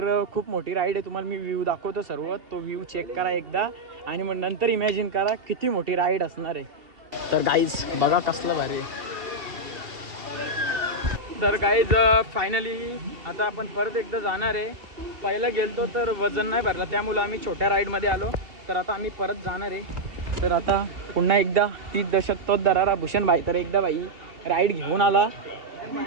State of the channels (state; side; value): late; left; 2.7 ms